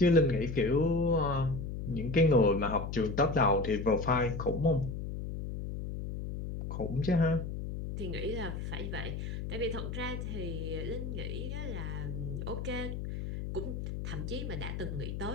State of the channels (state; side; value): noise; left; hum, 5 dB below the sound